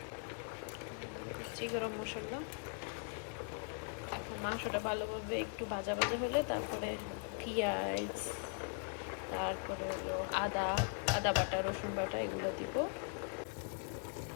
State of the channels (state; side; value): silent; right; 51 dB below the other